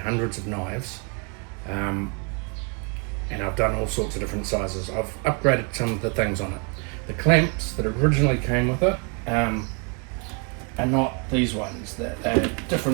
of knives, and I've done all sorts of different sizes. I've upgraded some of the things on it. The clamps that originally came with it are not these ones. They're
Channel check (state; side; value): quieter; left; 33.9 dB